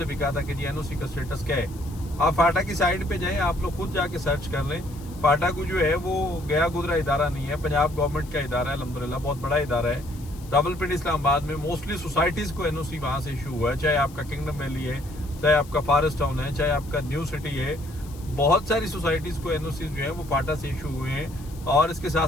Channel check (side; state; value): left; noise; hiss, 22 dB below the sound